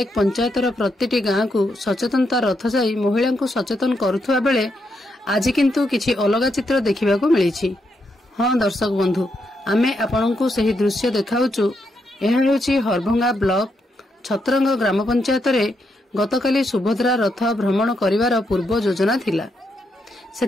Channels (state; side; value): normal; both; correlation 0.80